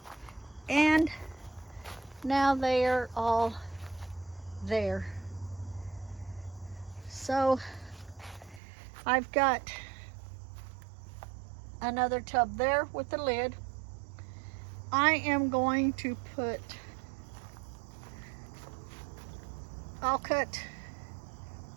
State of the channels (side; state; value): left; drops out; at 8.6 s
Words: And now they are all there. So I've got another tub there with the lid. I am going to I'll cut